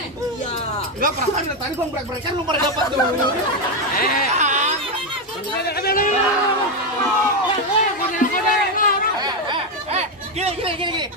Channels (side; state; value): both; normal; correlation 0.07